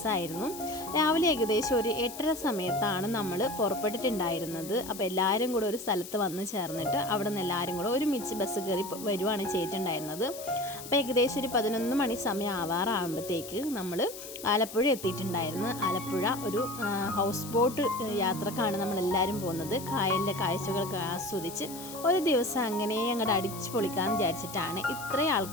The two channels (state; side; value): noise; left; hiss, 12 dB below the sound